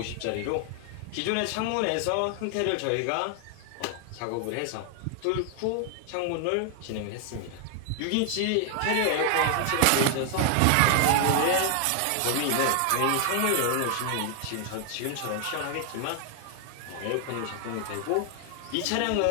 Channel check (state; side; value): different; both; correlation 0.00